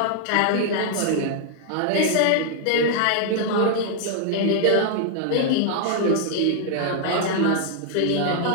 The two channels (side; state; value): both; different; correlation -0.01